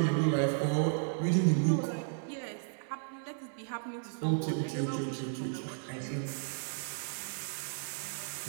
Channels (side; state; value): left; silent; 55 dB below the other